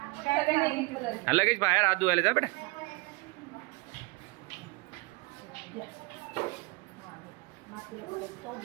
सगळ्यांनी एक एक कलर. हा लगेच बाहेर हात धुवायला जा बेटा.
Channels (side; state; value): left; quieter; 25.9 dB